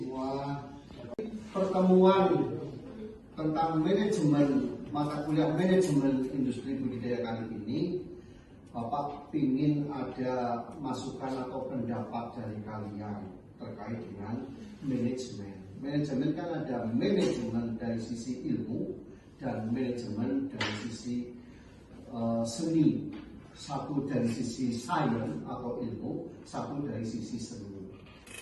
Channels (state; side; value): identical; both; correlation 1.00